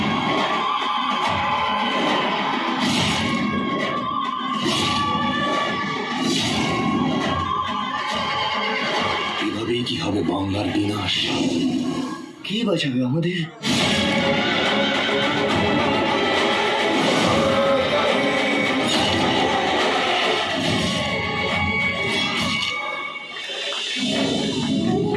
এভাবেই কি হবে বাংলার বিনাশ? কে বাঁচাবে আমাদের?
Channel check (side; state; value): both; identical; correlation 1.00